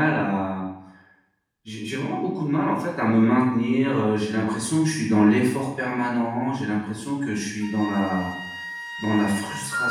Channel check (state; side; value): identical; both; correlation 1.00